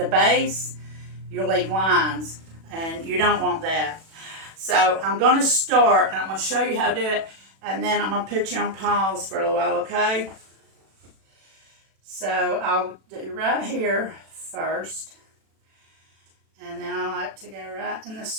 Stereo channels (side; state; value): left; late; 36 ms